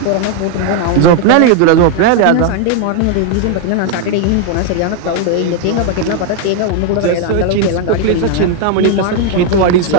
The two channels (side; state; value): both; different; correlation 0.00